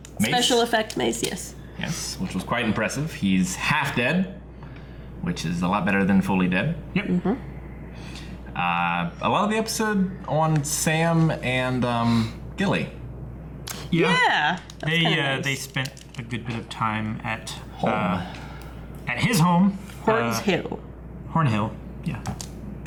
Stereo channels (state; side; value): identical; both; correlation 1.00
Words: mace. Special effect mace, yes. Yes, which was quite impressive. He's half dead, which is a lot better than fully dead. Yep. Mm-hmm. A lot of the episode on Sam and Gilly. Yeah. They spent a good bit of time at Home. at his home. Horns Hill. Hornhill. Yeah.